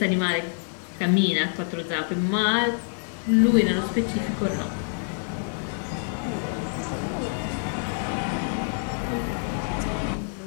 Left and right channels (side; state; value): right; silent; 61 dB below the other